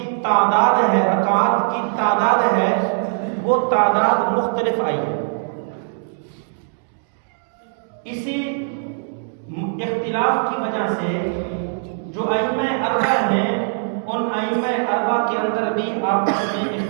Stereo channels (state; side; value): silent; left; digital silence